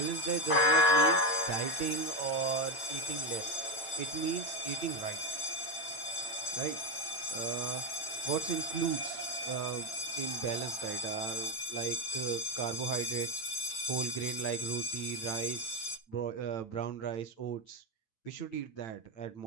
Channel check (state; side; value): late; right; 9.0 ms